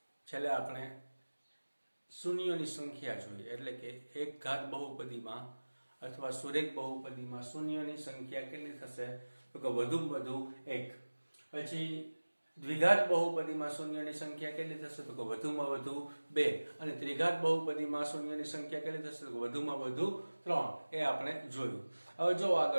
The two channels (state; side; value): inverted; both; correlation -1.00